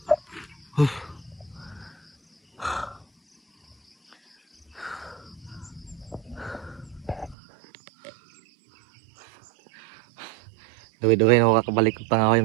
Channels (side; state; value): left; drops out; at 7.4 s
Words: Duwi-duwi na ako kakabalik ng